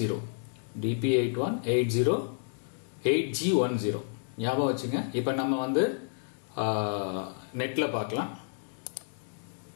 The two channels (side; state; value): right; silent; digital silence